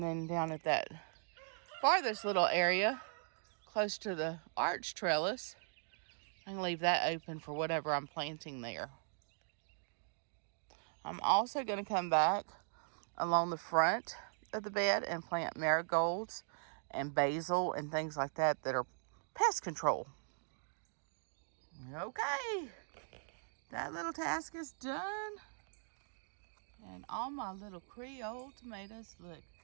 then down at that farthest little area, close to the arch trellis, I can leave that open for whatever I'm planting there. I'm also going to come back along the front of the bed and plant marigolds and basil and things like that that are pest control. Okay, that little task is done. And all my little Creole tomatoes look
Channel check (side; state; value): left; silent; digital silence